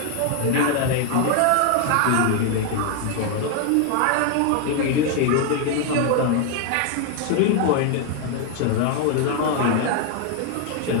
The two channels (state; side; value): different; both; correlation 0.00